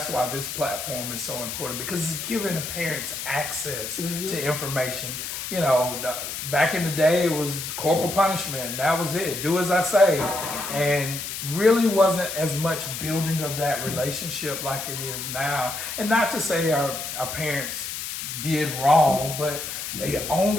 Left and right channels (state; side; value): noise; left; hiss, 6 dB below the sound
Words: why this platform is so important, because it's giving the parents access to information. You know, back in the day, it was corporal punishment. That was it. Do as I say. And really wasn't as much building of that relationship like it is now. And not to say our parents did wrong, but they